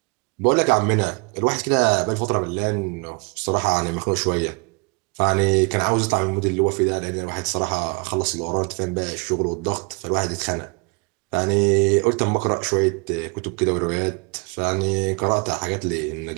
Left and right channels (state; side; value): quieter; left; 30.4 dB